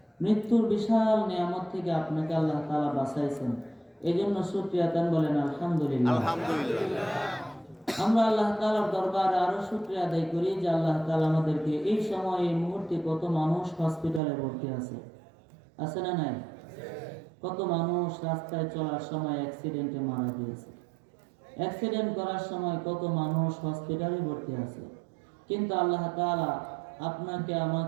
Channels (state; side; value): drops out; left; at 14.2 s